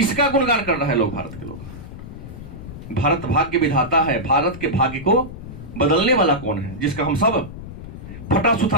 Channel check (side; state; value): left; noise; rumble, 12 dB below the sound